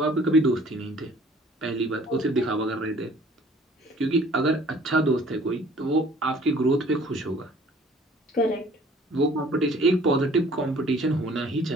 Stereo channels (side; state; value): both; normal; correlation 0.53